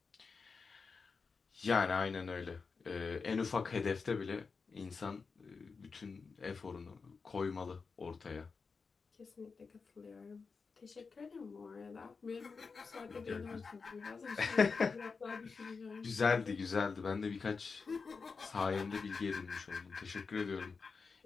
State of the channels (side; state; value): right; quieter; 4.9 dB